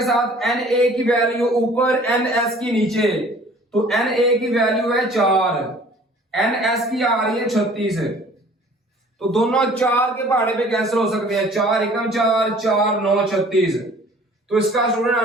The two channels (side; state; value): both; normal; correlation 0.51